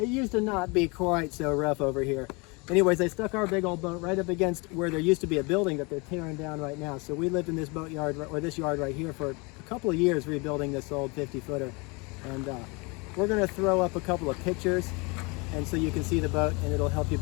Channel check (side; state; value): right; quieter; 28.7 dB